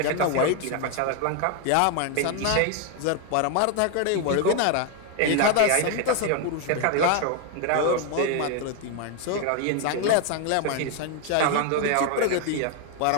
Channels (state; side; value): different; both; correlation 0.01